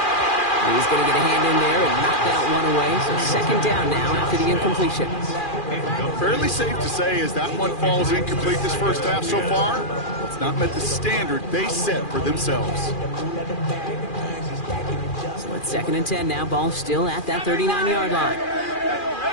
And he's going to get a hand in there and knock that one away. So second down now after the incompletion. Fairly safe to say as that one falls incomplete this first half so far, it's not met the standard they set for themselves. So it's second and 10 now. Ball still at that 39-yard line.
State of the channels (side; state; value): right; late; 2.4 ms